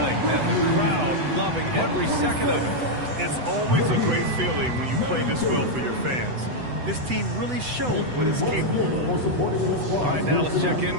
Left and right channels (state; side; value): late; left; 8.0 ms